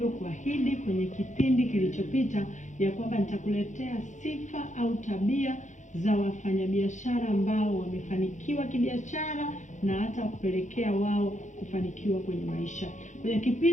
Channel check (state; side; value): late; right; 0.35 ms